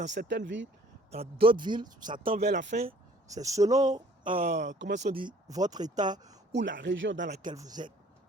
certaines villes, dans d'autres villes, ça tend vers la fin. C'est selon, comment on dit, votre état ou la région dans laquelle vous êtes.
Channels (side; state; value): both; normal; correlation 0.56